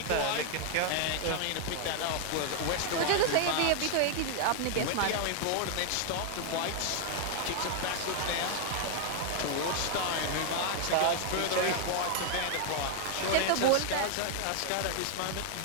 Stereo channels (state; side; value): different; both; correlation 0.00